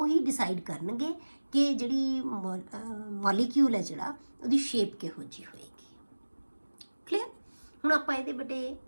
ਹੀ ਡਿਸਾਈਡ ਕਰਨਗੇ ਕਿ ਜਿਹੜੀ ਮੋਲੀਕਿਊਲ ਹੈ ਜਿਹੜਾ ਉਹਦੀ ਸ਼ੇਪ ਕਿਹੋ ਜਿਹੀ ਹੋਏਗੀ। ਕਲੀਅਰ। ਹੁਣ ਆਪਾਂ ਇਹਦੇ ਬੇਟੇ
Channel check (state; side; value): inverted; both; correlation -1.00